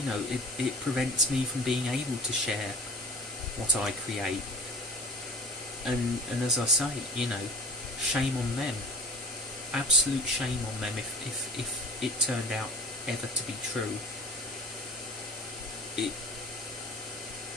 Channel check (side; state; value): both; normal; correlation 0.43